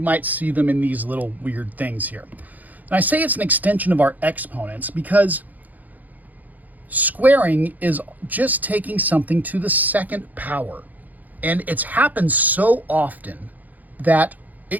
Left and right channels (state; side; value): late; left; 0.081 ms